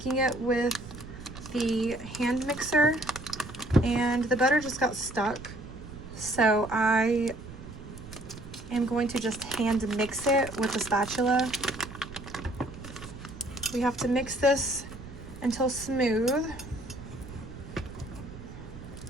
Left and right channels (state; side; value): noise; right; rumble, 14 dB below the sound